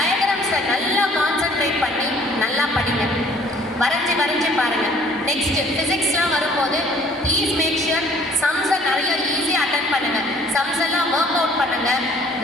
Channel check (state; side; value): normal; both; correlation 0.56